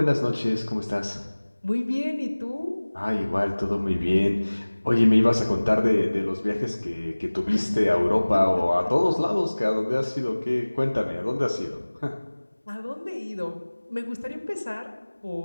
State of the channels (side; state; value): both; inverted; correlation -1.00